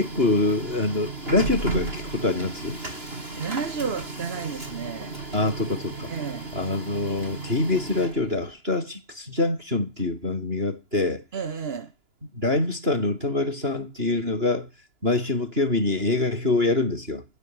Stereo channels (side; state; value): left; late; 2.9 ms